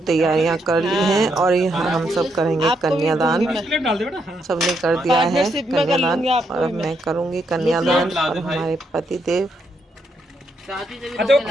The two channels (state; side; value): normal; both; correlation 0.78